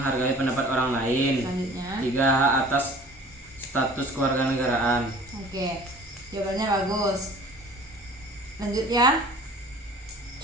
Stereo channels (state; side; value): normal; both; correlation 0.47